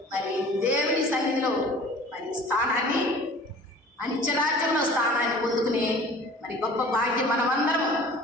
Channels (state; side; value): normal; both; correlation 0.45